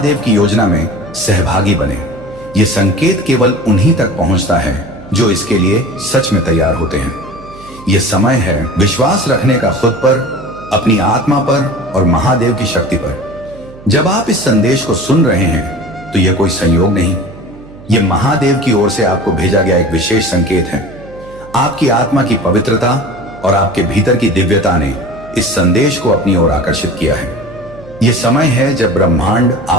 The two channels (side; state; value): right; noise; hum, 19 dB below the sound